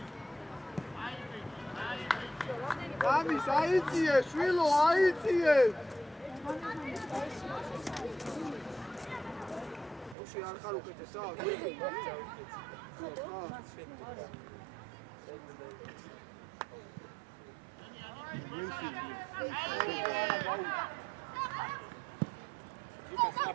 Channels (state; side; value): drops out; left; at 10.2 s